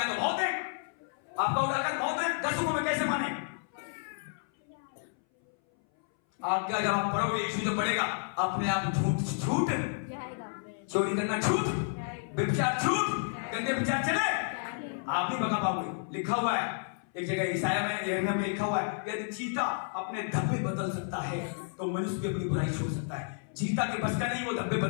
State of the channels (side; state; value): right; silent; 57 dB below the other